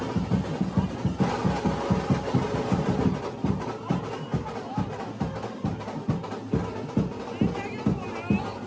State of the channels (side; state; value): both; identical; correlation 1.00